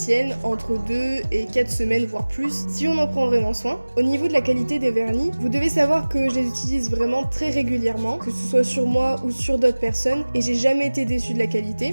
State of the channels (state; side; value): inverted; both; correlation -1.00